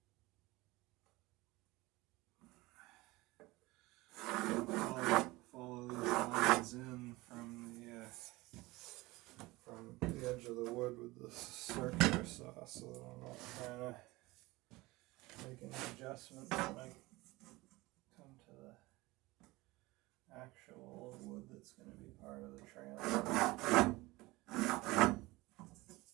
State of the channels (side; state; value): left; quieter; 21.0 dB